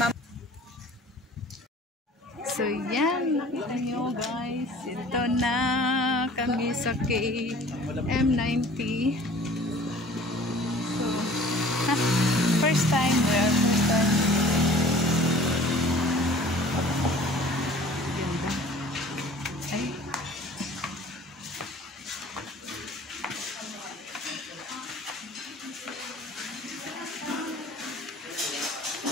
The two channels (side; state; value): both; normal; correlation 0.48